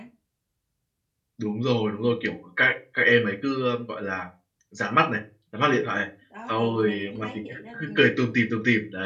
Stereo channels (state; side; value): identical; both; correlation 1.00